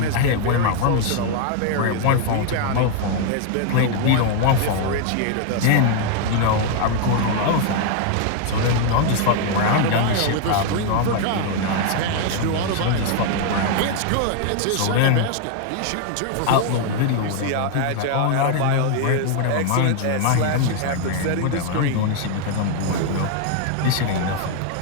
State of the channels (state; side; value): different; both; correlation 0.00